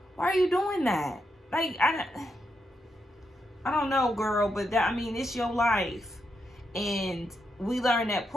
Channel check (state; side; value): normal; both; correlation 0.83